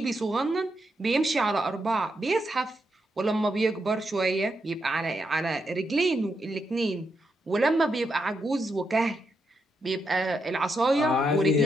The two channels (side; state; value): both; normal; correlation 0.82